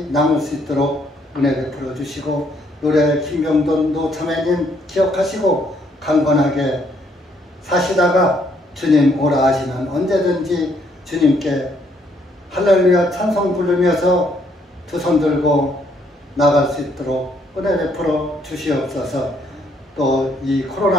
남을 수 있도록 은혜 베풀어 주시고 노래 김병돈 노자매님 기억하시고 강건하게 사시다가 주님 오라 하시면 언제든지 주님께 할렐루야 찬송 부르면서 두 손 들고 나갈 수 있도록 은혜 베풀어 주시옵소서. 또 이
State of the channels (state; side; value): normal; both; correlation 0.69